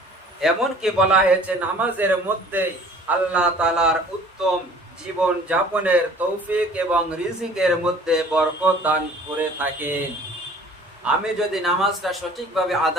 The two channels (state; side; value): normal; both; correlation 0.50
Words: এমনকি বলা হয়েছে নামাজের মধ্যে আল্লাহ তাআলার উত্তম জীবন যাপনের তৌফিক এবং রিজিকের মধ্যে বরকত দান করে থাকেন। আমি যদি নামাজটা সঠিকভাবে